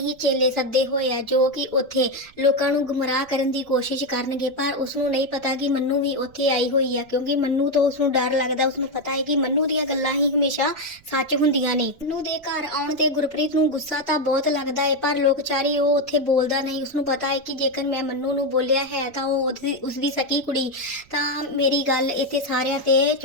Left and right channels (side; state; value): right; noise; rumble, 28 dB below the sound